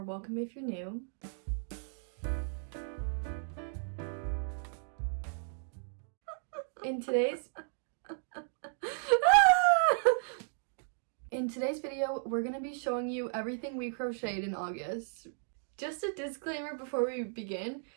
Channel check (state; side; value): silent; left; digital silence